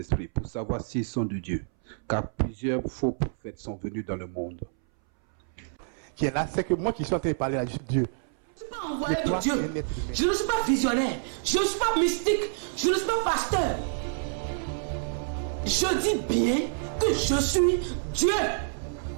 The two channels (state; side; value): silent; left; 59 dB below the other